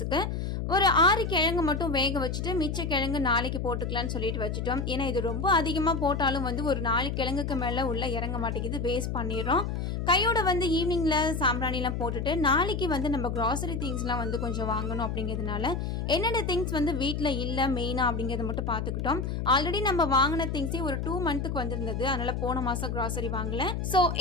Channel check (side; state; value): left; noise; hum, 2 dB below the sound